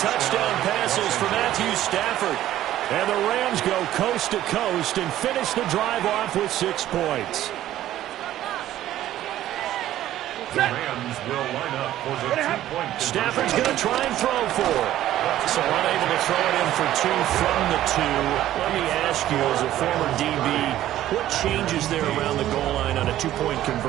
passes for Matthew Stafford. And the Rams go coast to coast and finish the drive off with 6 points. The Rams will line up for the 2-point conversion. Stafford's going to try and throw for it. So unable to throw it in for 2 from the 2. Let me ask you, as a former DB, what changes there around the goal line on a 2-point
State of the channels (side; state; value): left; quieter; 13.2 dB